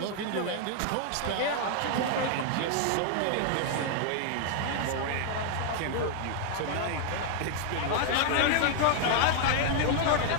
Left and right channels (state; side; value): different; both; correlation 0.00